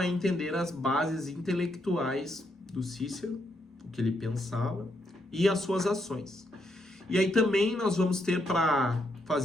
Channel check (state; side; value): normal; both; correlation 0.78